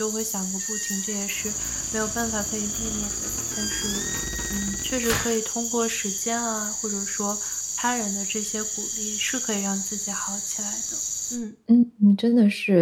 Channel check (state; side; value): identical; both; correlation 1.00